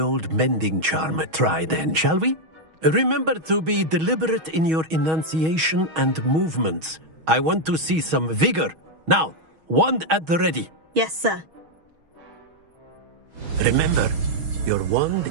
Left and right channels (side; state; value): left; late; 6.3 ms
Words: mending charm a try then, shall we? Remember to be deliberate in your enunciation and movements. I want to see some vigor. Now, wand at the ready. Yes, sir. Remember, your